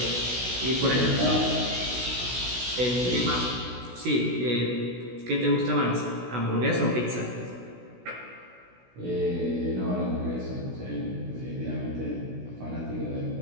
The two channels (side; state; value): left; late; 16 ms